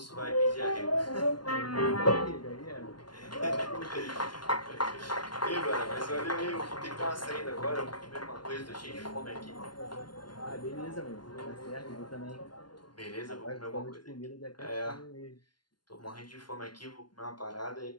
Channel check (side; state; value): right; late; 0.71 ms